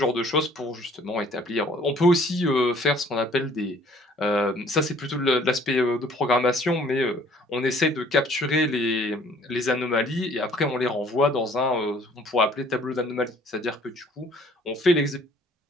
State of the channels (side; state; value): both; normal; correlation 0.57